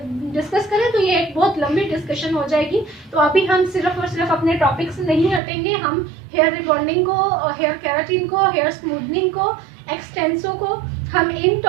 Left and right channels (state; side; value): drops out; left; at 5.4 s